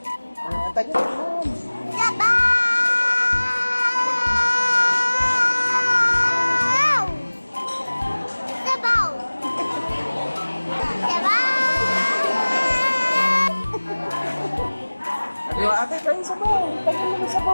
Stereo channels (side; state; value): both; inverted; correlation -1.00